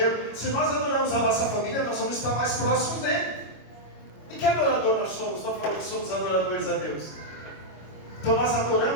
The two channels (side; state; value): right; late; 25 ms